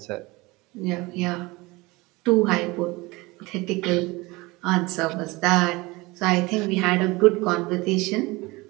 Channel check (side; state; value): left; quieter; 22.8 dB